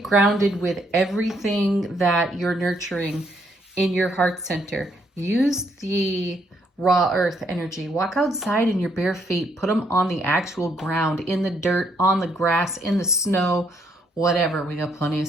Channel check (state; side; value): normal; both; correlation 0.72